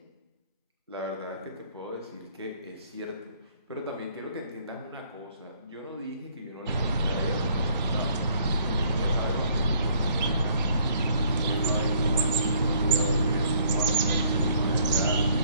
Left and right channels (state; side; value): inverted; both; correlation -0.62